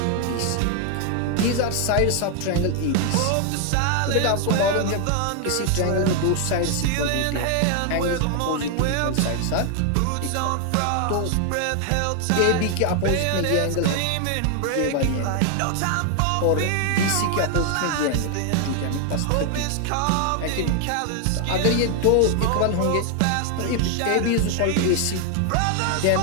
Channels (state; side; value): different; both; correlation 0.00